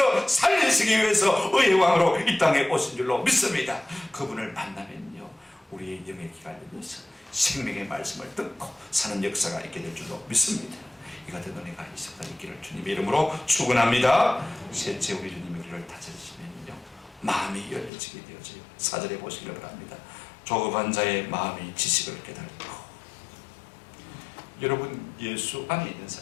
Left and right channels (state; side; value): drops out; right; at 17.9 s